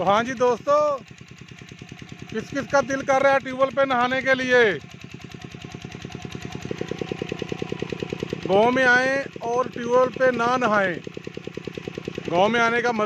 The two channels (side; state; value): both; identical; correlation 1.00